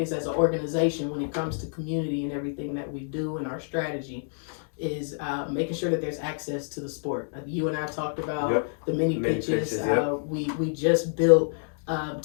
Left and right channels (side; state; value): right; silent; digital silence